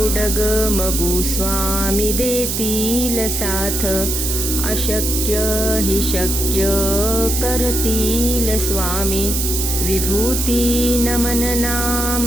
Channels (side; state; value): right; noise; hiss, 1 dB below the sound